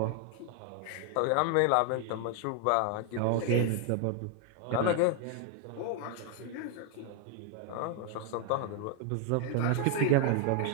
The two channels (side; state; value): both; different; correlation 0.00